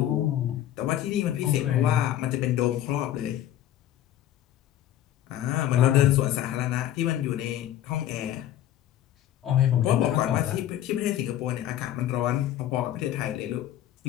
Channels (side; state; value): right; quieter; 12.1 dB